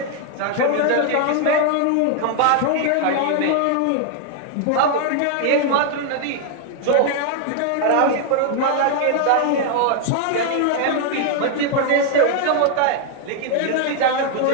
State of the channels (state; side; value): different; both; correlation 0.00